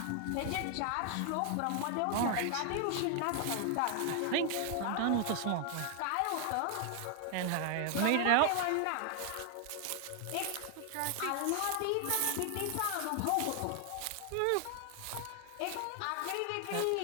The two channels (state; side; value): different; both; correlation 0.00